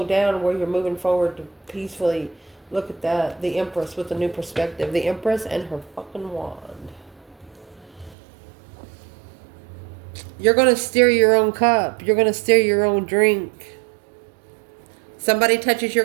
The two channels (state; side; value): drops out; left; at 8.2 s